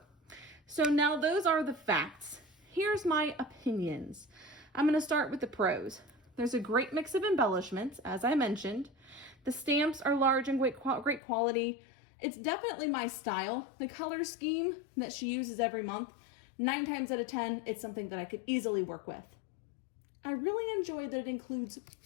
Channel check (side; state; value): right; drops out; at 11.2 s